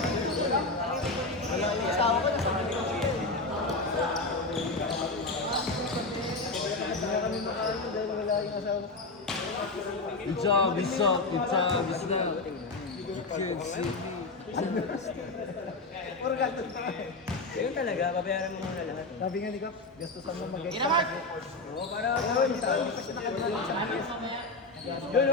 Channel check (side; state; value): right; quieter; 3.3 dB